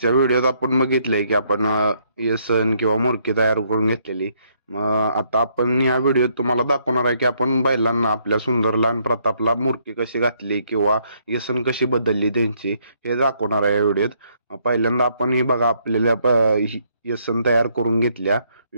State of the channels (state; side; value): inverted; both; correlation -0.70